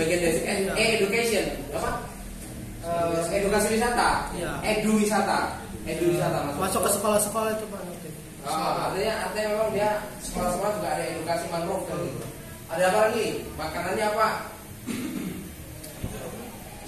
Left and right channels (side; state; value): both; identical; correlation 1.00